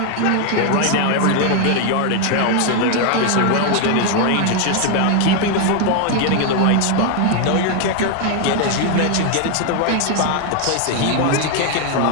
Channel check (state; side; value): different; both; correlation 0.00